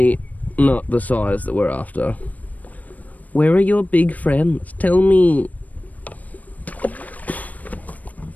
not the size that we're after. Where are your big friends? Tell me.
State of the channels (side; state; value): right; late; 0.074 ms